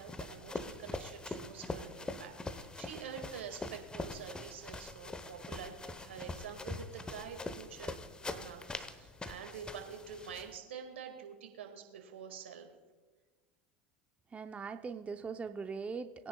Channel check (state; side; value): normal; both; correlation 0.47